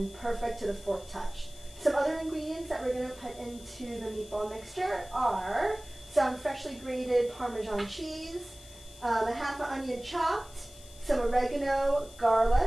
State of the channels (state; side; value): noise; left; hiss, 20 dB below the sound